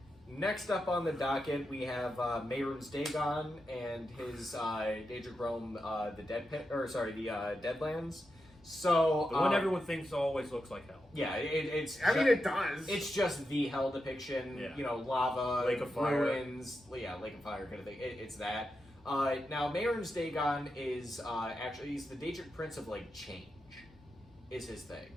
next up on the docket, we have Mehrunes Dagon and his Daedric realm, the Deadlands. So the one everyone thinks always looks like hell. yeah, it's. It does. It's just the hell depiction. Yeah. You know, lava, Lake of Fire. ruins. Yeah, Lake of Fire kind of thing. It's that. Now, Mehrunes Dagon is actually he's the Daedric Prince of like change, is his thing.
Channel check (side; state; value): both; normal; correlation 0.88